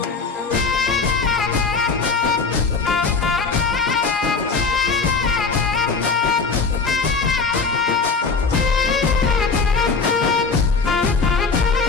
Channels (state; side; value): quieter; right; 4.7 dB